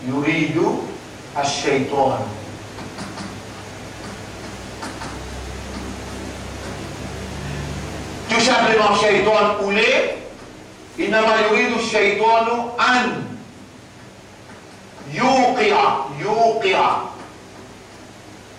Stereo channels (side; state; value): both; identical; correlation 1.00